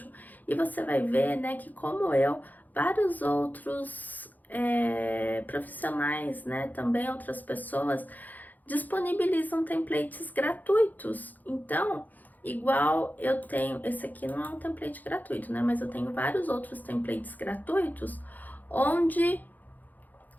e você vai ver, né, que como eu, vários outros profissionais, né, também outras pessoas disponibilizam templates gratuitos. Então, igual eu tenho, esse aqui não é um template gratuito, né, mas eu tenho vários outros templates gratuitos, onde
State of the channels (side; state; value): right; late; 0.083 ms